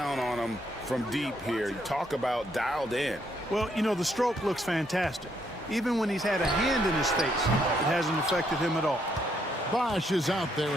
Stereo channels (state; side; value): normal; both; correlation 0.73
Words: on him from deep here. You talk about dialed in. Well, you know, the stroke looks fantastic. Even when he's had a hand in his face, it hasn't affected him at all. Bosch is out there